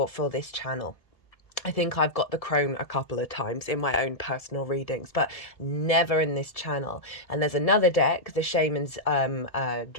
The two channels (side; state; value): right; late; 1.7 ms